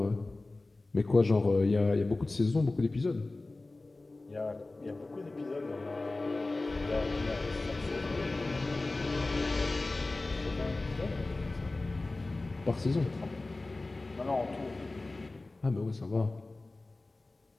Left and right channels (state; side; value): quieter; right; 3.1 dB